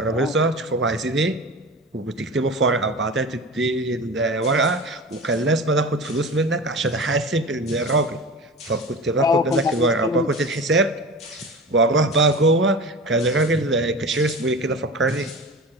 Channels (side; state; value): both; normal; correlation 0.32